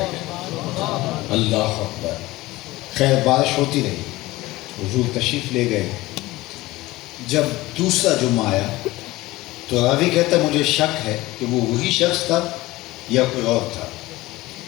اللہ اکبر! خیر بارش ہوتی رہی، حضور تشریف لے گئے۔ جب دوسرا جمعہ آیا تو راوی کہتا ہے مجھے شک ہے کہ وہ وہی شخص تھا یا کوئی اور تھا۔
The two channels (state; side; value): quieter; right; 19.0 dB